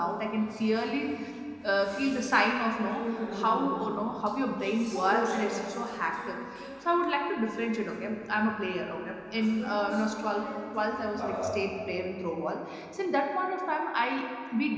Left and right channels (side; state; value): both; identical; correlation 1.00